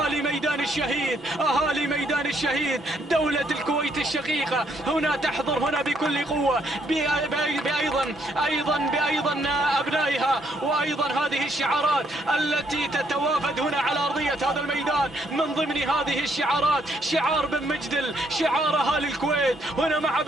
ميدان الشهيد دولة الكويت الشقيقة هنا تحضر هنا بكل قوة، بأيضا أبنائها، وأيضا هذه الشعارات التي تتوافد هنا على أرضية هذا الميدان. من ضمن هذه الشعارات شعار بن مجدل، شعار أهالي الكويت هنا مع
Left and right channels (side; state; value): both; normal; correlation 0.71